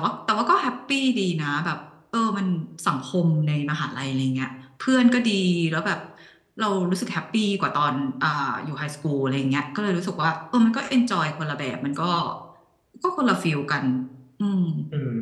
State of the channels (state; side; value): identical; both; correlation 1.00